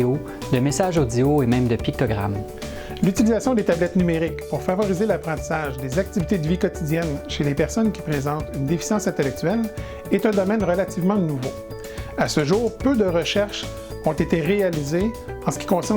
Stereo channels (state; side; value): identical; both; correlation 1.00